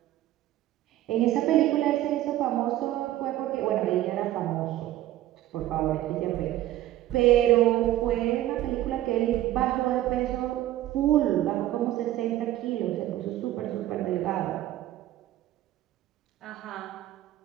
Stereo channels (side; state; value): left; quieter; 14.2 dB